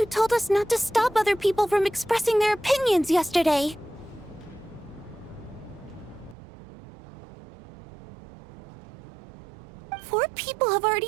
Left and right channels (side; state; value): left; drops out; at 6.4 s